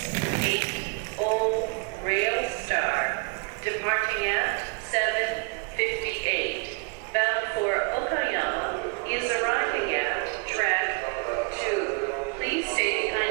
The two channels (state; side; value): quieter; left; 34.1 dB